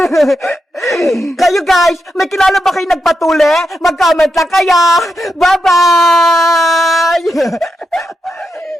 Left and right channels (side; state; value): both; normal; correlation 0.85